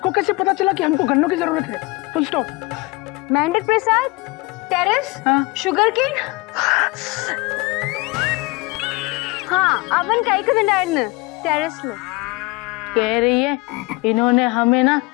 कैसे पता चला कि हमको गन्नों की जरूरत है? Full stop. मेंढक प्रसाद, टेरेस, शुगर केन। हाँ अवन काई का न टेरेस में कह रही है इन्होंने हमें ना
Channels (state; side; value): quieter; right; 24.7 dB